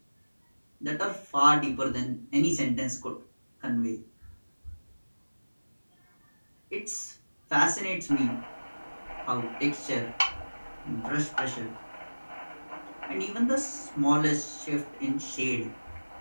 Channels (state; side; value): inverted; both; correlation -1.00